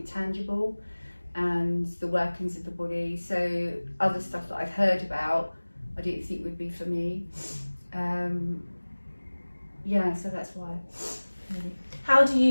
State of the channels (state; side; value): inverted; both; correlation -1.00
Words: tangible and the workings of the body. So other stuff that I've heard about, I didn't think would be for me. Yeah, so that's why. Really. How do